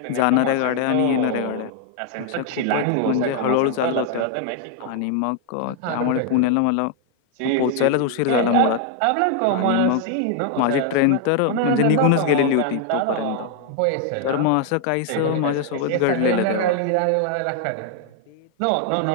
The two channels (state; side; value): different; both; correlation 0.00